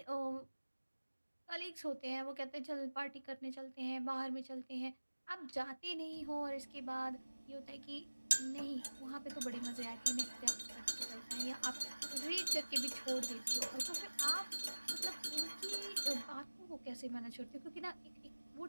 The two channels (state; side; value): inverted; both; correlation -1.00